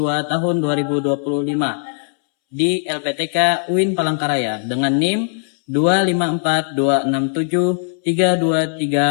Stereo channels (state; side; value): silent; right; 67 dB below the other